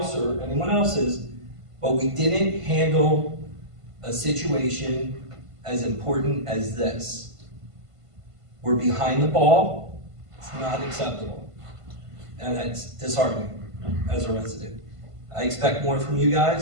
or anyone else's, but we didn't handle a situation as important as this. We're behind the ball. It's not acceptable. And it's disheartening as a resident. I expect more from you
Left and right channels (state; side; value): late; left; 1.5 ms